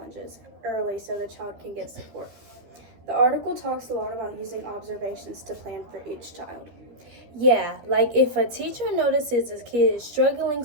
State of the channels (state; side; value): late; left; 13 ms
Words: early so the child can get support. The article talks a lot about using observations to plan for each child. Yeah, like if a teacher notices a kid is struggling